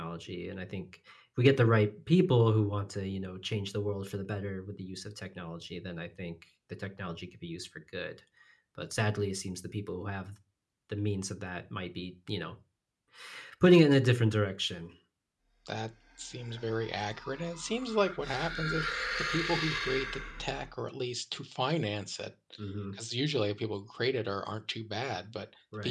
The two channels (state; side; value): identical; both; correlation 1.00